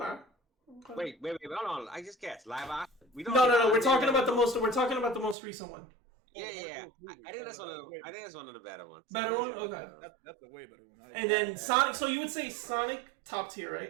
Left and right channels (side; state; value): left; drops out; at 5.4 s